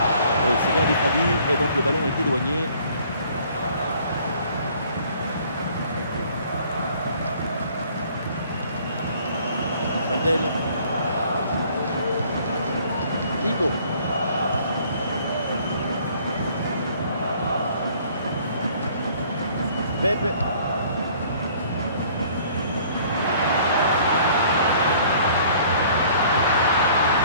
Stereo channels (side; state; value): both; inverted; correlation -0.56